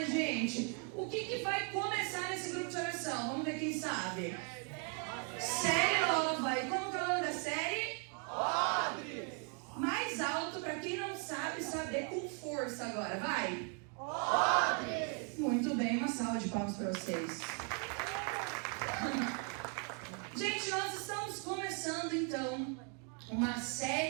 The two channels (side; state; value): left; quieter; 38.0 dB